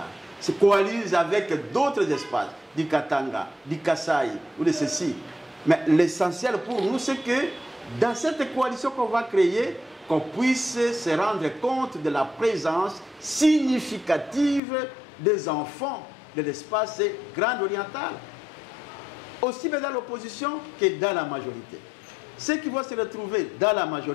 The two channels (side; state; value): right; drops out; at 14.6 s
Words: se coalise avec d'autres espaces, du Katanga, du Kasaï ou de ceci. Mais l'essentiel pour nous, c'est que dans cette coalition qu'on va créer, qu'on puisse se rendre compte de la présence significative des enfants de l'espace Grand Oriental, aussi bien dans l'opposition que dans la majorité. Ceux qui vont se retrouver dans la